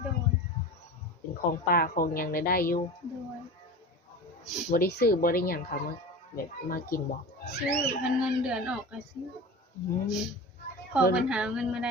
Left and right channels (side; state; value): both; normal; correlation 0.32